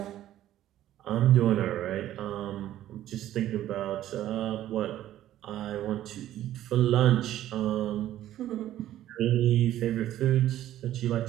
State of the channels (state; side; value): quieter; left; 13.0 dB